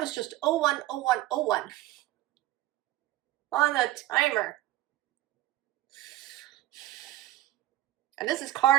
just 010101 on the timer. And this is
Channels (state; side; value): quieter; left; 15.5 dB